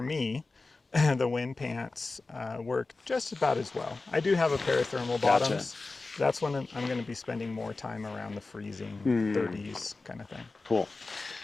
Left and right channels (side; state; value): right; quieter; 3.6 dB